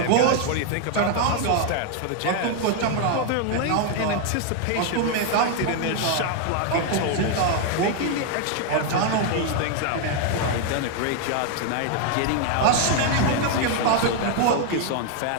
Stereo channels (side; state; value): both; different; correlation 0.00